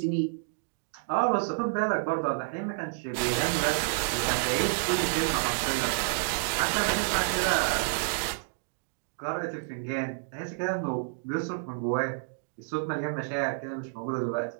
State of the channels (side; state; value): left; silent; digital silence